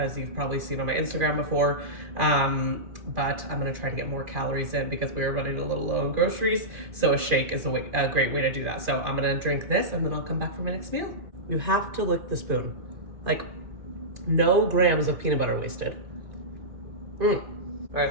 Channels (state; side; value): late; left; 2.4 ms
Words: you've probably seen on my Instagram before. But I'm gonna try to get more calories in because we were running a little low on groceries. So a shake is a great way to do that. So I'm gonna drink this and then I'll come back for my next meal. You have to lick the spoon. Like, no grams of peanut butter wasted. All right,